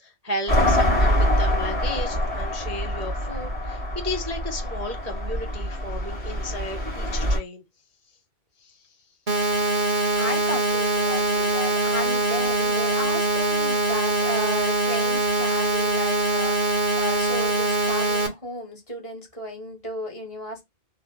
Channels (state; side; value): late; left; 2.3 ms